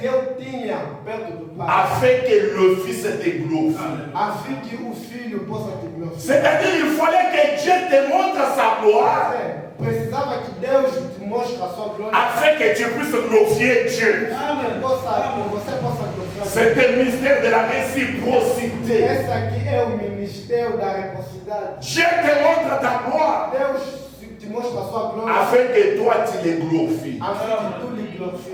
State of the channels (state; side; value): identical; both; correlation 1.00